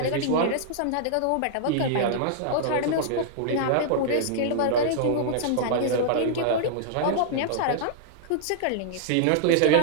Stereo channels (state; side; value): different; both; correlation -0.01